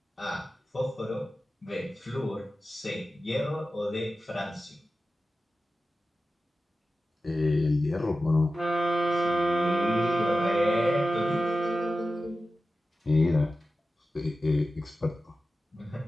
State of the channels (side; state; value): both; normal; correlation 0.93